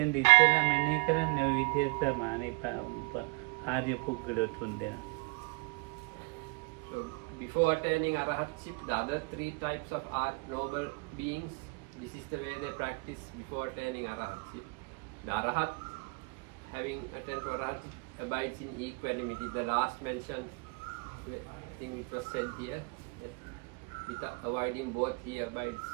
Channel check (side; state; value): left; quieter; 30.0 dB